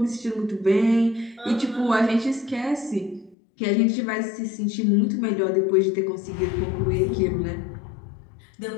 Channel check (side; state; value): right; drops out; at 3.4 s